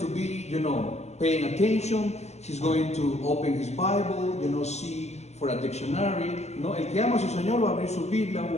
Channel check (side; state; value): right; late; 0.32 ms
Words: be, paying attention. He's going to open his Bible, see for a dictionary. El que ama a su Señor va a abrir su Biblia, va a